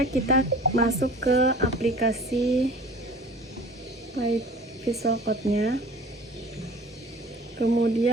kita masuk ke aplikasi Visual Code-nya.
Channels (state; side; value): normal; both; correlation 0.44